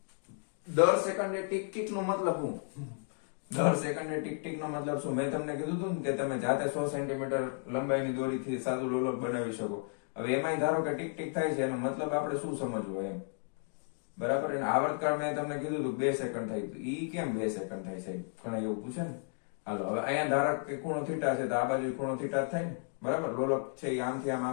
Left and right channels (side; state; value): right; silent; 56 dB below the other